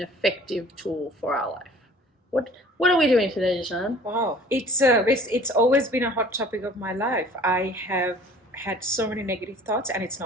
tool for our life. What are we doing today, Jishan? Wow, it's always been a hot topic of my life. I have had so many negative thoughts, and it's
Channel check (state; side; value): normal; both; correlation 0.49